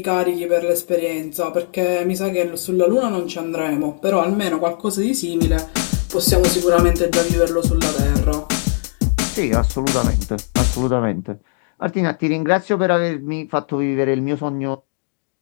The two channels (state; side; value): silent; right; digital silence